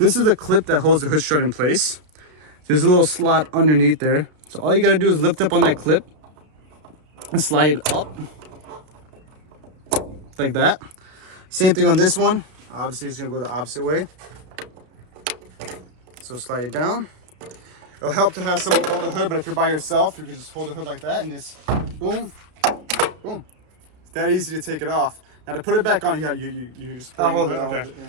is the clip that holds the hood strut in place. There's a little slot underneath there. So all you gotta do is lift up on that clip and slide it up like that. Same thing on this one. Obviously it's gonna go the opposite way. So slide it down. It'll help to have someone hold the hood, but if you're by yourself, you can just hold the hood like that and just boom, boom. It's that easy to take it off. Now to put it back on, you just hold it. Okay. Yeah.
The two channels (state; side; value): late; left; 32 ms